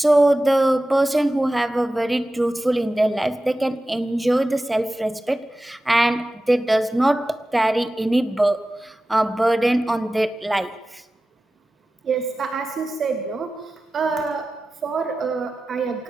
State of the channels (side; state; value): both; normal; correlation 0.95